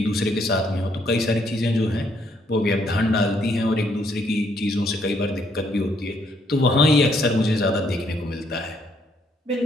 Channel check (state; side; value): normal; both; correlation 0.70